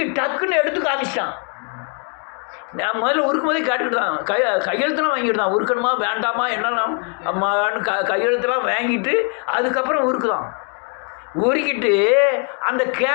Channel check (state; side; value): quieter; right; 39.4 dB